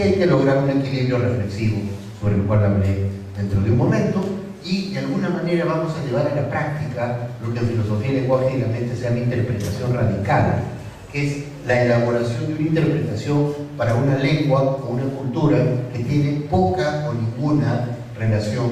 hay que lograr un equilibrio reflexivo sobre el cual hablaré dentro de un momento, y de alguna manera vamos a llevar a la práctica lo que en filosofía, lenguaje y la mente se llama interpretación radical, que es la elaboración de una interpretación para una lengua o una cultura que tiene poca o ninguna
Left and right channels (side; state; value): both; identical; correlation 1.00